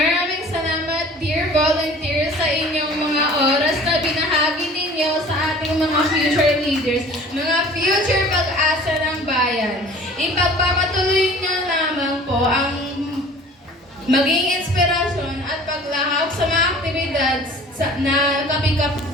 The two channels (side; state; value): both; normal; correlation 0.46